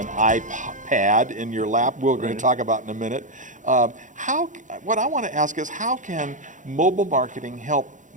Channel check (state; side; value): late; left; 0.37 ms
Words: iPad in your lap, we're going to talk about in a minute. What I want to ask is, how can mobile marketing help